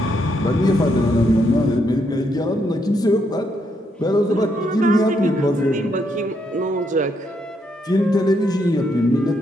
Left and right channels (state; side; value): normal; both; correlation 0.76